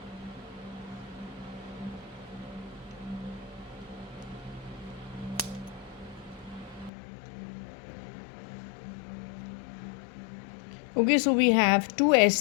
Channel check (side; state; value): right; drops out; at 6.9 s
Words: Okay, so we have two